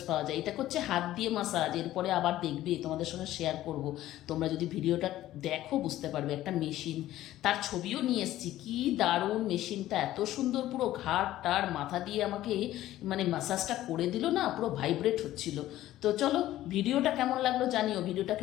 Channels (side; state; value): right; quieter; 14.4 dB